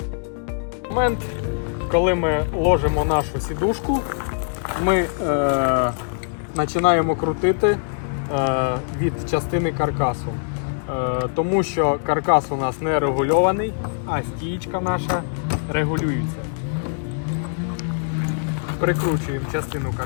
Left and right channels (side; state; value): right; silent; 64 dB below the other